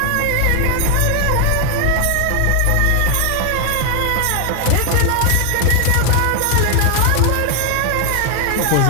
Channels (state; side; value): different; both; correlation 0.00